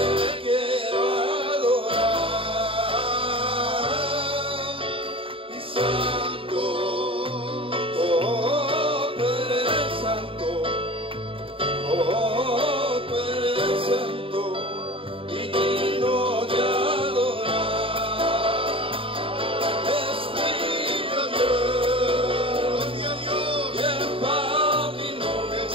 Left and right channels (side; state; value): left; late; 0.26 ms